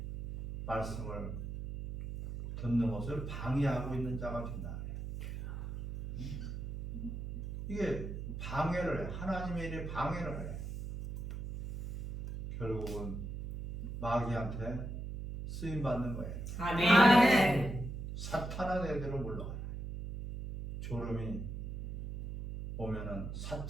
말씀을 듣는 것을 방해하고 있는 자가 된다. 이게 방해를 해. 하나님의 일에 방해를 해. 결국은 마귀한테 쓰임 받는 거예요. 아멘. 사탄아 내대로 물러가라. 졸음이 오면은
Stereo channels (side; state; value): right; noise; hum, 6 dB below the sound